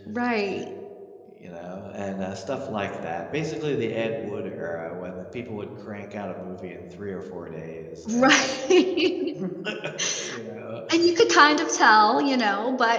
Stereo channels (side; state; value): both; identical; correlation 1.00